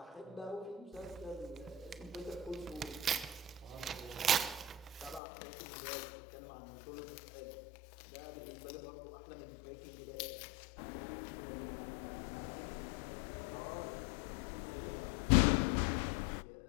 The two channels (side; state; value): right; drops out; at 5.2 s